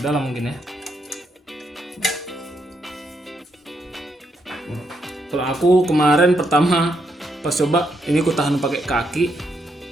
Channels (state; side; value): normal; both; correlation 0.78